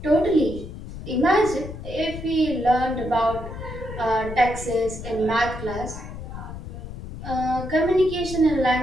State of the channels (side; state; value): left; noise; rumble, 10 dB below the sound